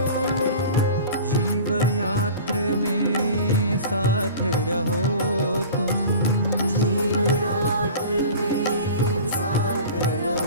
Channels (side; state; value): both; inverted; correlation -0.39